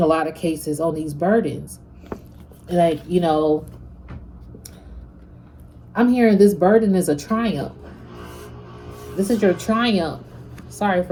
a lot of cases on these burdens. Like, I'm hearing this burden is a triumph. This is your triumph. Sorry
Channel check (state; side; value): identical; both; correlation 1.00